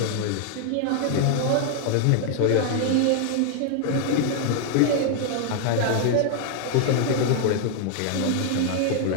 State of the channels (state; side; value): different; both; correlation 0.00